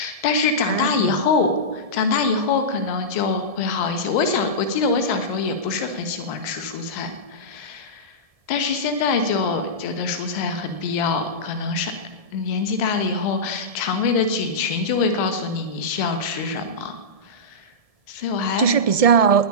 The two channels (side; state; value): left; late; 1.7 ms